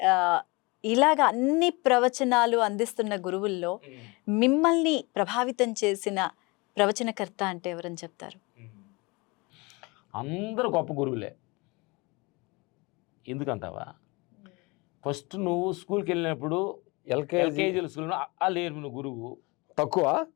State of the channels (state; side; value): quieter; right; 26.1 dB